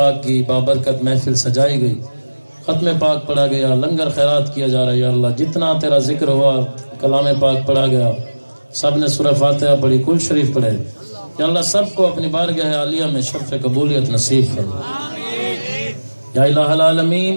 کی بابرکت محفل سجائی گئی، ختم پاک پڑھا گیا، لنگر خیرات کیا جا رہا ہے۔ یا اللہ جتنا تیرا ذکر ہوا، کلام پاک پڑھا گیا، سب نے سورہ فاتحہ پڑھی، کل شریف پڑھے، یا اللہ سب کو اپنی بارگاہ عالیہ میں شرف قبولیت نصیب فرما۔ یا الہ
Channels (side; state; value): both; inverted; correlation -1.00